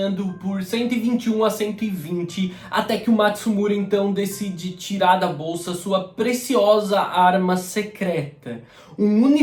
por 121 a 120, até que o Matsumura então decide tirar da bolsa sua preciosa arma secreta, um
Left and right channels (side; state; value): both; identical; correlation 1.00